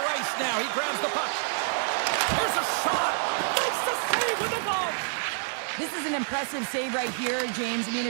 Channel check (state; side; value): silent; left; 60 dB below the other